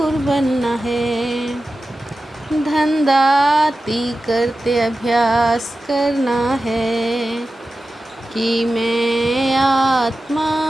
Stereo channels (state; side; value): normal; both; correlation 0.93